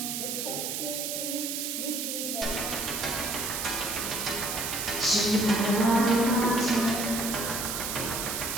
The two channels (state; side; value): noise; right; hiss, 2 dB below the sound